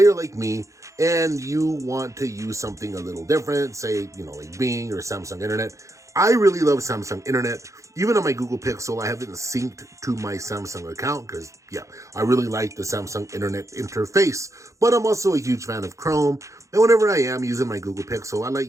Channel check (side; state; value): left; late; 0.15 ms